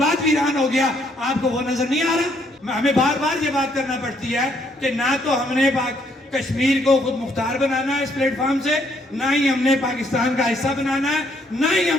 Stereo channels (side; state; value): both; normal; correlation 0.70